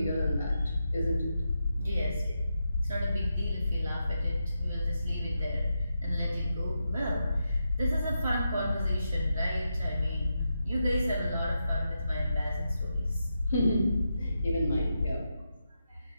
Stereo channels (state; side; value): inverted; both; correlation -0.86